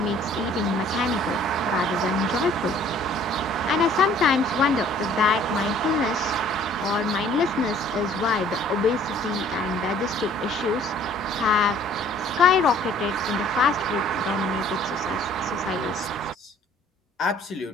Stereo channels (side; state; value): both; normal; correlation 0.55